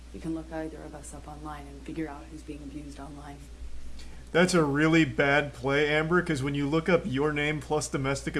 you can look either of us up online and figure out who's being abused online. That's a really bad play, Amber, because when you look up your name plus domestic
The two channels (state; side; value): identical; both; correlation 1.00